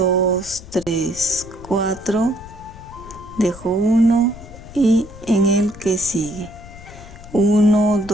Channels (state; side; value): noise; left; rumble, 17 dB below the sound